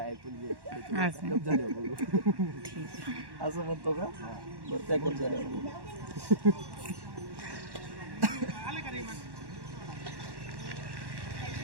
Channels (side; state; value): left; late; 1.1 ms